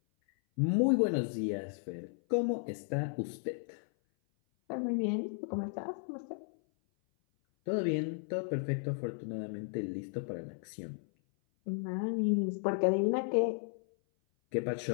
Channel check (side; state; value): right; silent; 55 dB below the other